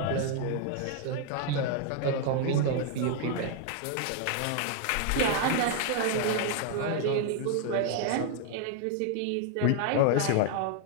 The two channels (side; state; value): both; different; correlation 0.00